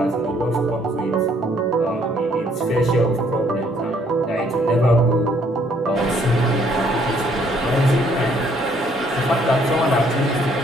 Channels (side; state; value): both; normal; correlation 0.65